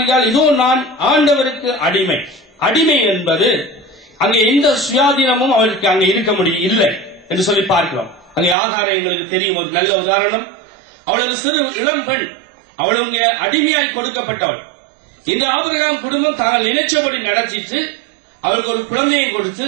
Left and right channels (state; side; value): drops out; left; at 8.6 s